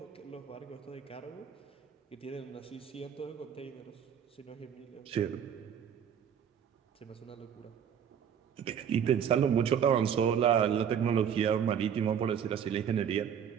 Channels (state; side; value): quieter; left; 8.3 dB